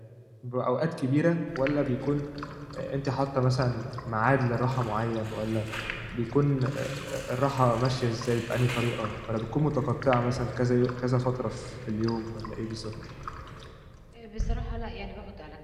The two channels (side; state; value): both; identical; correlation 1.00